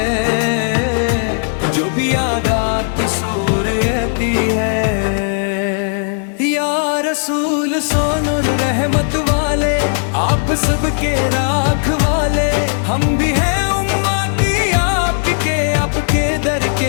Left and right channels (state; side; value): silent; right; 62 dB below the other